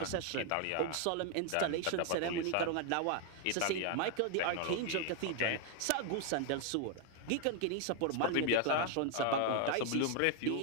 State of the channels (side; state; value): both; different; correlation 0.00